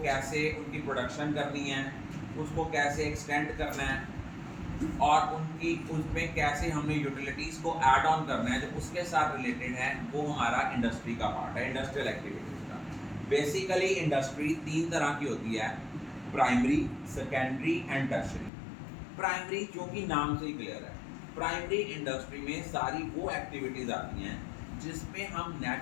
कैसे उनकी प्रोडक्शन करनी है, उसको कैसे एक्सटेंड करना है और उनकी उसमें कैसे हमने यूटिलिटीज़ को ऐड ऑन करना है, जो उसके साथ रिलेटेड है, वो हमारा इंडस्ट्री का पार्ट है, इंडस्ट्रियल एक्टिविटीज़ का। बेसिकली इंडस्ट्री तीन तरह की होती है: primary, secondary and tertiary. Primary जो कि नाम से ही क्लियर है, प्राइमरी इंडस्ट्री में सारी वो एक्टिविटीज़ आती हैं जिसमें हम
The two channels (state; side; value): drops out; right; at 18.5 s